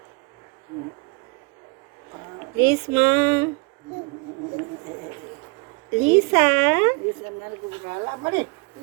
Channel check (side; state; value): left; quieter; 30.8 dB